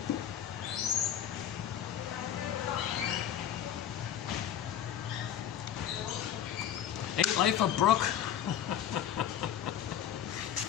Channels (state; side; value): quieter; right; 10.0 dB